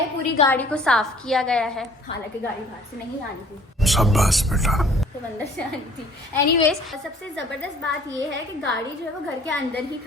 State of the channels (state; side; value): normal; both; correlation 0.54